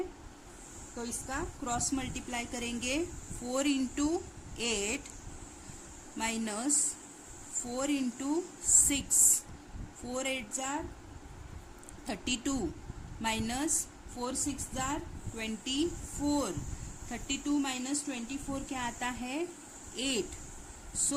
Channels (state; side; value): identical; both; correlation 1.00